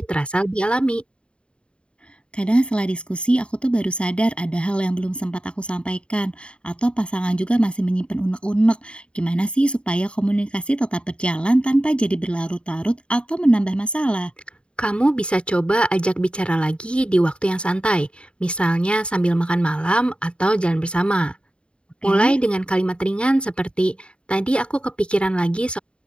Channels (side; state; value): right; late; 0.055 ms